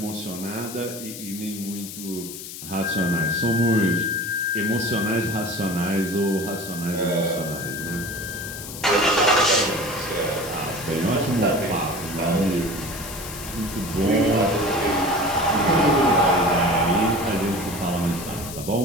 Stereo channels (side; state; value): left; noise; hiss, 11 dB below the sound